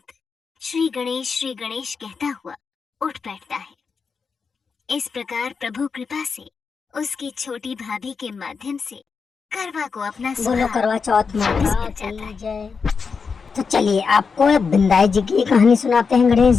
श्री गणेश कहता हुआ उठ बैठता है। इस प्रकार प्रभु कृपा से उसकी छोटी भाभी के माध्यम से करवा को अपना बोलो सुहाग करवा चौथ माता मिल जाता है। की जय। तो चलिए आपको बिंदाई जी की कहानी सुनाते हैं, गणेश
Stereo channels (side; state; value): right; quieter; 5.4 dB